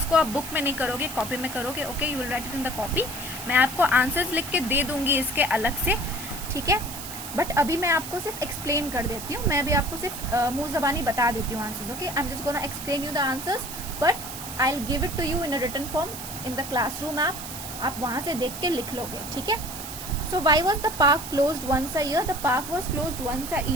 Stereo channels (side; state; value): right; noise; hiss, 9 dB below the sound